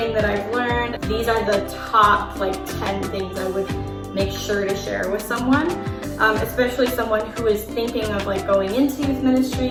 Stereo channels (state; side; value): identical; both; correlation 1.00